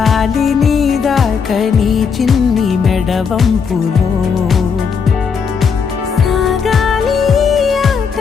నీ దాకా నీ చిన్ని మెడవంపులో సాగాలి ఆట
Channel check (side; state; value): right; quieter; 6.1 dB